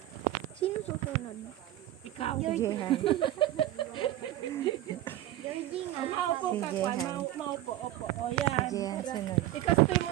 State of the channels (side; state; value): left; quieter; 14.3 dB